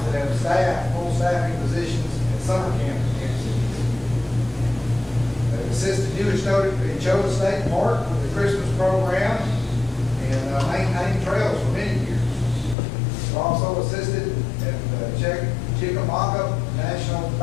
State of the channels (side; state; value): right; drops out; at 12.8 s